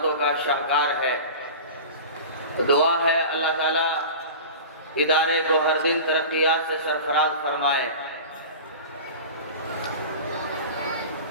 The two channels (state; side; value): inverted; both; correlation -0.33